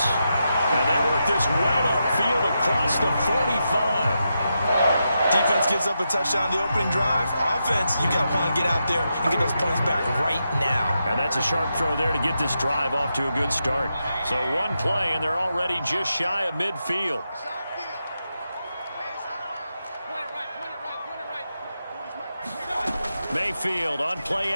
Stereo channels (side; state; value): both; inverted; correlation -0.86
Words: And they work this well upfield across the 45. Defense gives up a touchdown the opening drive. Offense, you got to want to get out there and get those points back right now. And that's a sharp throw there to get this drive off to a good start. So one play, and they're already just shy of midfield. Mayfield on play